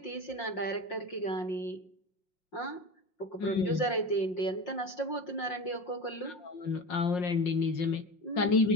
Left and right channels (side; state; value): right; late; 5.6 ms